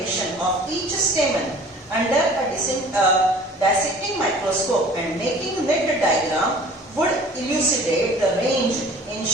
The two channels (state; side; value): normal; both; correlation 0.47